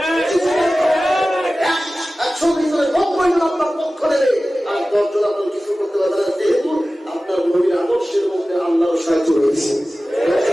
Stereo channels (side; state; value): both; normal; correlation 0.96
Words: 100 ভিতরে 90 জন আপনার পক্ষ নেবে আর 10 জন আপনার কিছু করতে পারবে না, যেহেতু আপনার নবীর আদর্শের মধ্যে আল্লাহর সাহায্য রয়েছে।